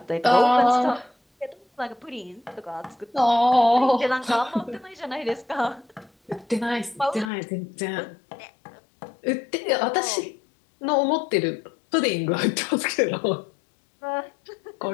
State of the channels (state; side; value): drops out; right; at 7.3 s